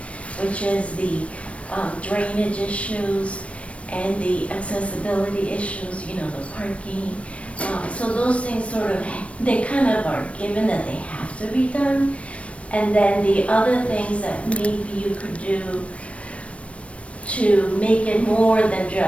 which is the drainage issues and the accessibility issues, you know, the parking. So those things sort of, they kind of are given that they have to be done. And then the other things that maybe you could do to make it more than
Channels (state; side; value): late; right; 0.063 ms